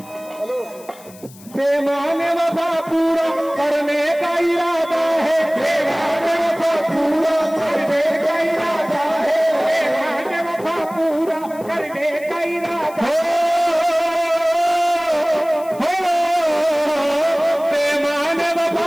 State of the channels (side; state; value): left; noise; hiss, 22 dB below the sound